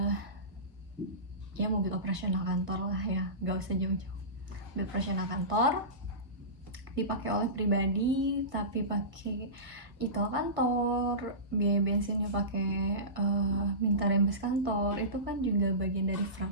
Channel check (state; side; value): late; left; 1.6 ms